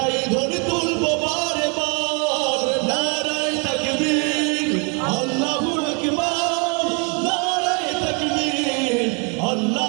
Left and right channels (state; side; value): quieter; left; 34.5 dB